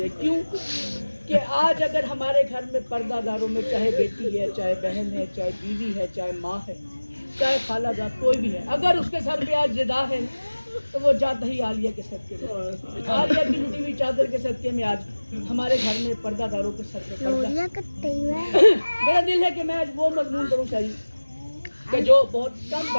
کیوں کہ آج اگر ہمارے گھر میں پردہ داروں میں چاہے بیٹی ہے چاہے بہن ہے چاہے بیوی ہے چاہے ماں ہے چاہے خالہ جات کوئی بھی ہے اگر اس کے سر پہ آج ردا ہے تو وہ جاتا ہی عالیہ کے صدقے میں عالیہ کی لٹی ہوئی چادر کے صدقے میں آج ہمارے گھر میں پردہ داروں کے سر پہ میرا دل ہے کہ میں آج وہ مضمون کروں چاہیے کہ جو بہت کم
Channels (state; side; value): inverted; both; correlation -1.00